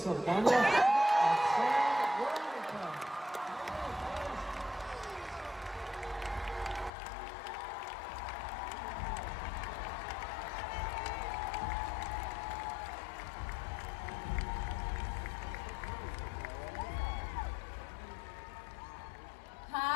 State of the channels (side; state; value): right; drops out; at 6.9 s